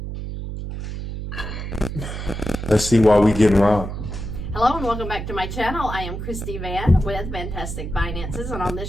Let's see why we getting robbed. Hello and welcome back to my channel. I am Christy Van with Fantastic Finances, and on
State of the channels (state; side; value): noise; right; hum, 6 dB below the sound